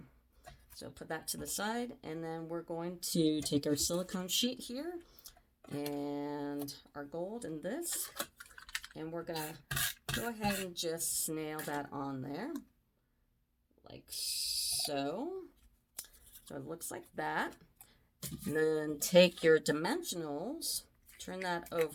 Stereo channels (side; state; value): both; identical; correlation 1.00